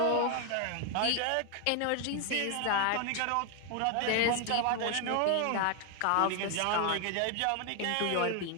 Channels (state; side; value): different; both; correlation 0.00